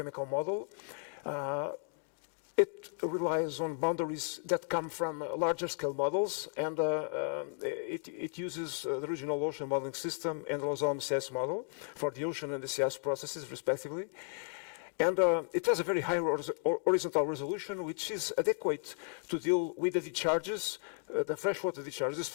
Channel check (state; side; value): silent; right; 55 dB below the other